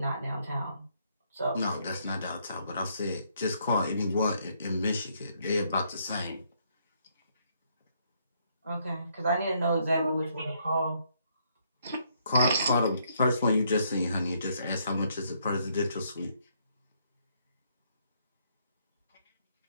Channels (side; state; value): both; inverted; correlation -0.72